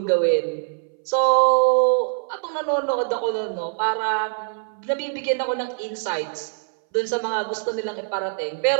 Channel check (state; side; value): silent; left; 60 dB below the other